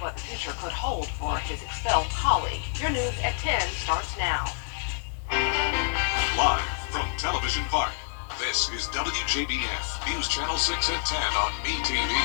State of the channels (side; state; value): right; silent; digital silence